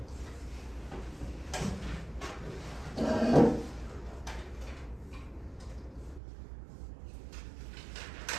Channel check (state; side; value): drops out; left; at 6.2 s